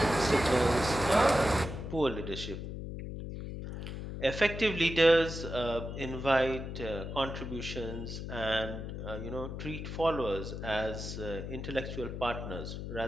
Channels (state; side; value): noise; left; hum, 7 dB below the sound